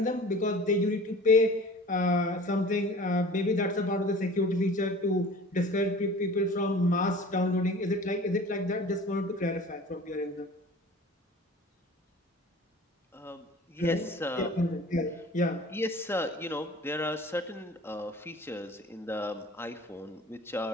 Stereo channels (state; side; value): normal; both; correlation 0.42